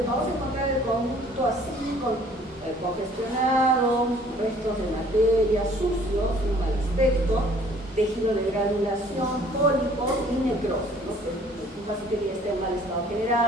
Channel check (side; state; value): both; normal; correlation 0.56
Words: vamos a encontrar el conducto así, congestionado, restos de materia, sucios, un mal aspecto, tejido de granulación, pólipos y necrosis, ¿no? Un paciente que ya esté en mal estado